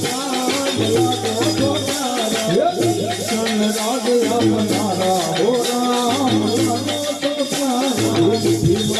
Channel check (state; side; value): identical; both; correlation 1.00